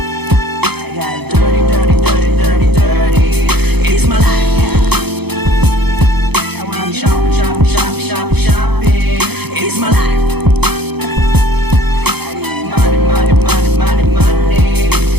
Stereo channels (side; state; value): left; late; 0.98 ms